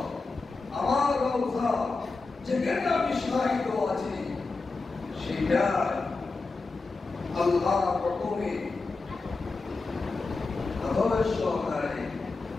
আমার রওজা যেখানে আমি শায়িত আছি সেটা আল্লাহ প্রথমে আদরের সহকারে,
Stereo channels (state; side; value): quieter; right; 3.9 dB